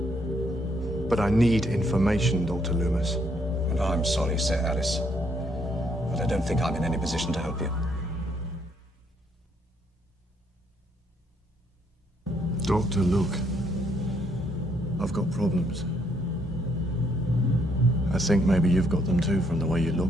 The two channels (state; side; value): normal; both; correlation 0.71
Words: But I need information, Dr. Loomis. And I'm sorry, Sir Alice. But I don't think I'm in any position to help you. Doctor, look. I've got problems. I think maybe you've got them too from the way you look,